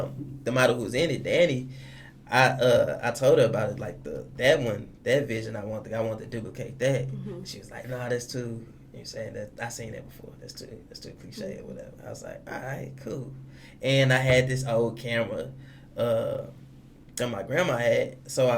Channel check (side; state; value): both; identical; correlation 1.00